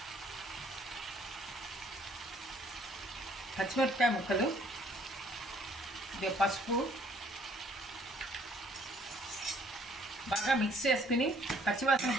పచ్చిమిరపకాయ ముక్కలు, పసుపు బాగా మిక్స్ చేసుకుని పచ్చివాసన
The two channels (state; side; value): normal; both; correlation 0.61